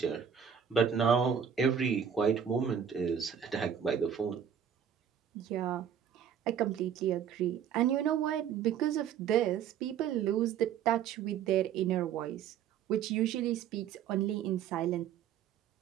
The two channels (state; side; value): quieter; left; 8.4 dB